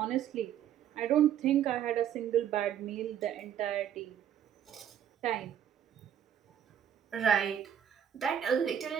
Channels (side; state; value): left; quieter; 9.6 dB